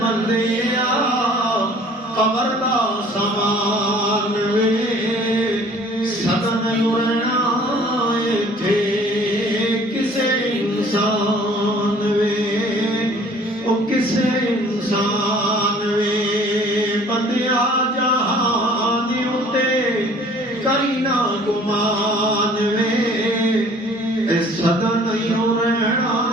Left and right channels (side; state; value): both; normal; correlation 0.53